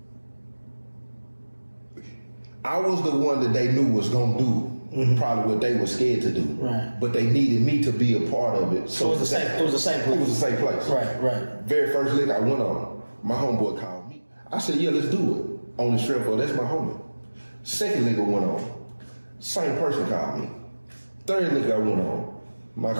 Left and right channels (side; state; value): both; inverted; correlation -1.00